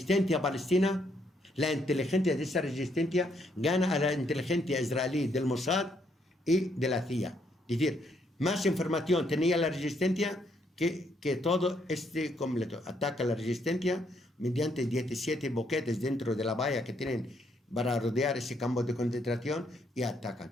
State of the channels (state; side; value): normal; both; correlation 0.72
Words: palestina, la inteligencia de esa resistencia gana a la inteligencia israelí del Mossad y de la CIA. Es decir, más información tenía la resistencia que todo este completo. Ataca la resistencia mediante 17 boquetes dentro de la valla que tienen para rodear ese campo de concentración y